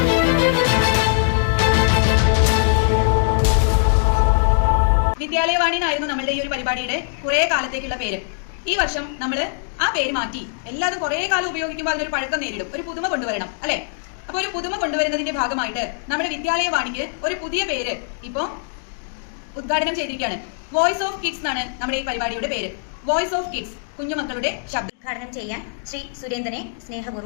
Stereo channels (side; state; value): right; silent; digital silence